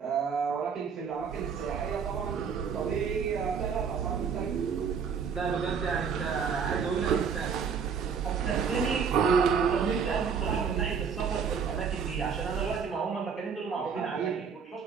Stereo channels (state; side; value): quieter; left; 6.4 dB